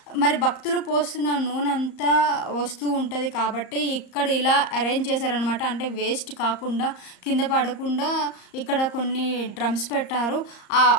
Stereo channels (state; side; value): late; right; 34 ms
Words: మరి భక్తులు పోస్తున్న నూనె అంతా వస్తూ ఉంటుంది కాబట్టి ఇక్కడ ఇలా అరేంజ్ చేశారనమాట. అంటే వేస్ట్ కాకుండా, కింద పడకుండా ఇక్కడ కొన్ని డ్రమ్స్ పెట్టారు.